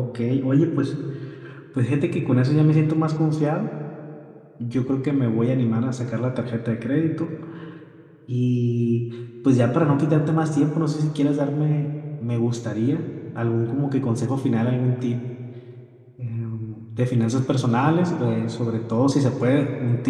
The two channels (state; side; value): identical; both; correlation 1.00